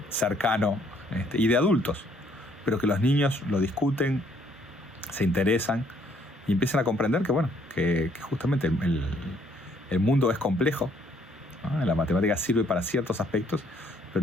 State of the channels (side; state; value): both; normal; correlation 0.66